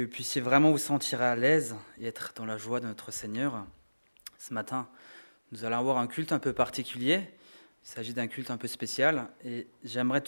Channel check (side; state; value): both; inverted; correlation -1.00